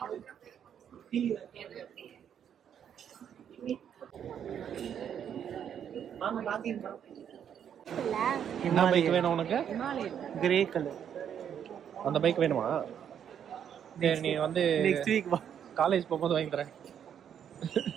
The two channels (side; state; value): left; quieter; 8.8 dB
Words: என்ன பைக் வேணும் உனக்கு? Grey colour. அந்த பைக் வேணுமா? சரி, நீ வந்து நெக்ஸ்ட் வீக் வா. காலேஜ் போகும்போது வாங்கி தரேன்.